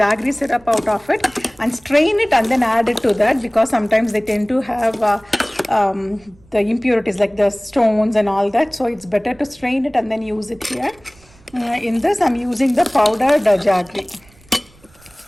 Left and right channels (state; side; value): noise; right; rumble, 28 dB below the sound